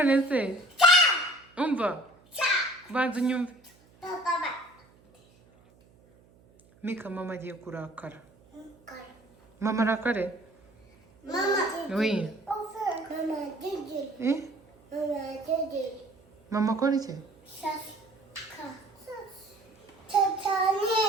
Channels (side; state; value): right; noise; hum, 29 dB below the sound